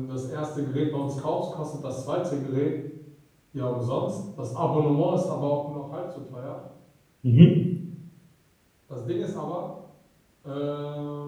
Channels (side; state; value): both; identical; correlation 1.00